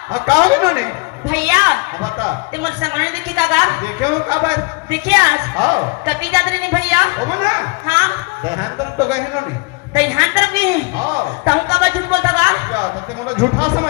हाँ कहा इन्होंने भैया बता ते मोर संगने देखे कागा देखे हो काबर देखे आज हाँ कभी जाते नहीं भैया ओ मना हाँ देहांतर तो गए इन्होंने दहिहान तरफ गए हैं हाँ ताऊ का बात झूठ बोलता का क्या तो मतलब झूठा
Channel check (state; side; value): quieter; right; 28.1 dB